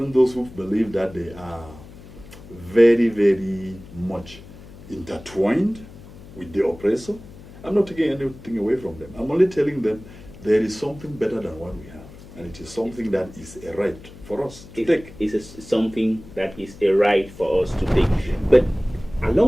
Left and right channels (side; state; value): left; noise; hum, 18 dB below the sound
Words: those who believe that they are very, very much intertwined with the oppressor. I'm not taking anything away from them. I'm only telling them there is something better than what we have. And it is something that is a right for us to take. It's something that is a right for us to take. But